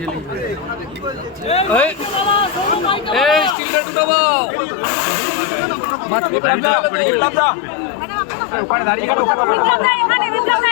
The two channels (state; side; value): drops out; right; at 3.6 s